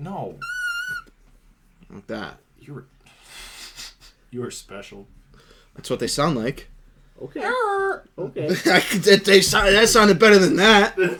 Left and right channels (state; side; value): identical; both; correlation 1.00